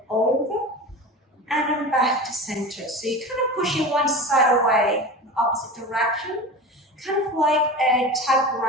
over and then back to center. So you're kind of pushing one side away in the opposite direction, kind of like a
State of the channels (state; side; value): normal; both; correlation 0.30